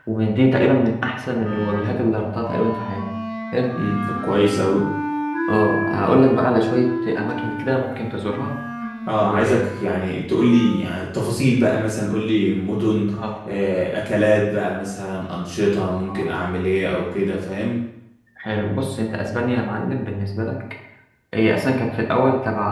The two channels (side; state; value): both; identical; correlation 1.00